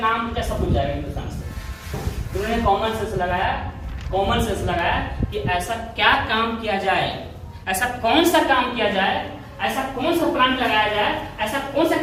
क्या सब भूल जाएगा हिंदुस्तान से। उन्होंने कॉमन सेंस लगाया कि ऐसा क्या काम किया जाए, ऐसा कौन सा काम किया जाए, ऐसा कौन सा प्लांट लगाया जाए, ऐसा कौन सा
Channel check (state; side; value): identical; both; correlation 1.00